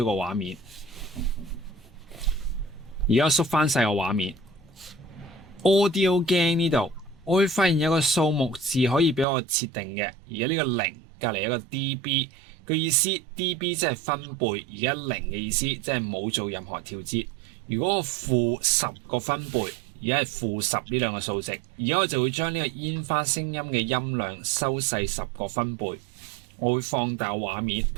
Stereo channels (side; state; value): left; drops out; at 9.2 s